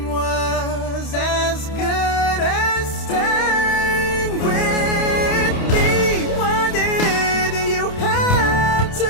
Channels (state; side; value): late; right; 28 ms